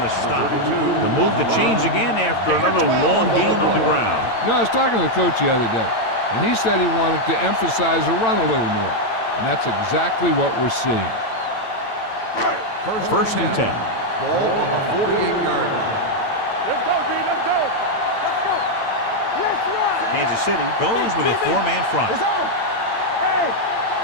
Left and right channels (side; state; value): right; late; 8.9 ms